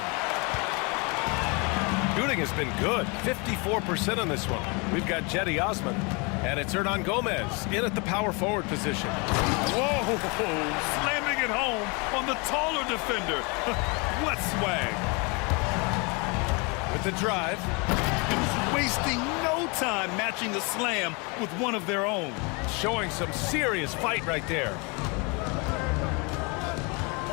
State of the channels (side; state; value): right; quieter; 30.5 dB